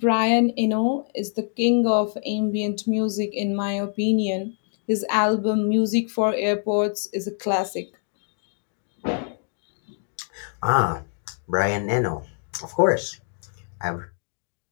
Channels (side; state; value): right; silent; 60 dB below the other